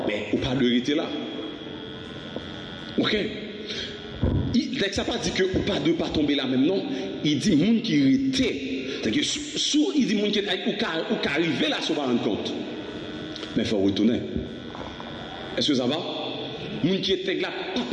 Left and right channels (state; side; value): identical; both; correlation 1.00